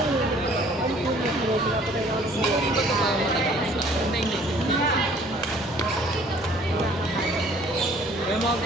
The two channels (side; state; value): both; normal; correlation 0.56